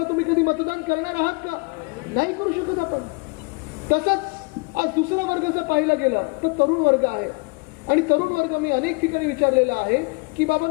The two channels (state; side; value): quieter; right; 29.1 dB